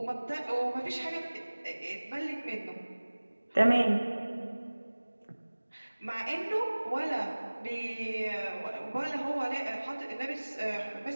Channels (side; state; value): both; inverted; correlation -1.00